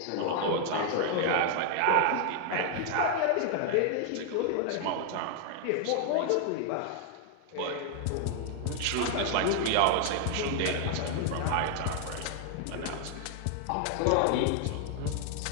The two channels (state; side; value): different; both; correlation 0.00